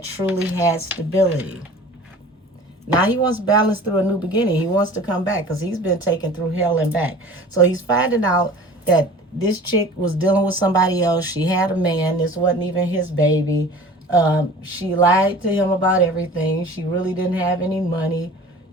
truly had stability. Now he wants balance through a new beginning. He wants to come back because he's been taken through hell and back. So he's finding out that this chick was dealing with somebody else. She had a man. This wasn't even his baby. She lied to him about everything. She really didn't have any money.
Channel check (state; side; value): normal; both; correlation 0.42